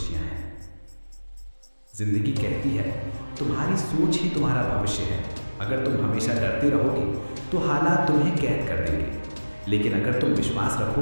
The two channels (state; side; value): inverted; both; correlation -1.00